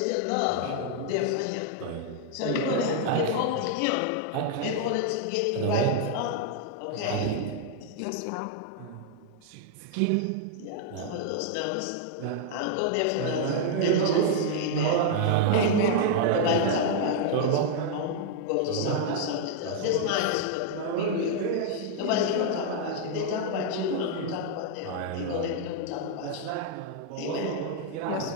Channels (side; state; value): both; different; correlation -0.01